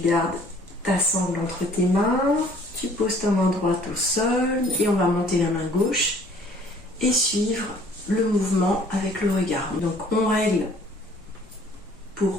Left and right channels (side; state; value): both; normal; correlation 0.56